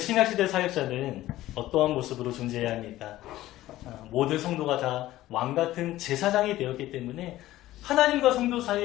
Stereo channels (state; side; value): quieter; right; 15.5 dB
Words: 사역자는 어떠한 모습으로 존재해야 합니까? 모든 성도가 다 왕같은 제사장이 되었기 때문에 하나님과 성도